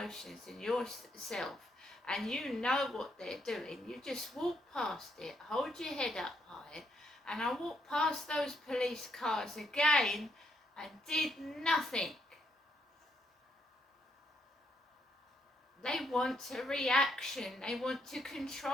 and yourself, and you know what they're doing, you just walk past it, hold your head up high. And I walked past those police cars again and did nothing. They want a reaction. They want to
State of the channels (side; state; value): both; normal; correlation 0.75